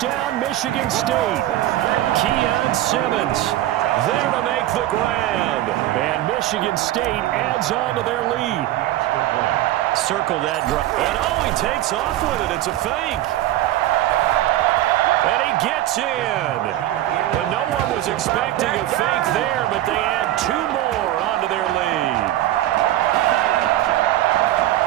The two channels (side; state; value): left; quieter; 14.4 dB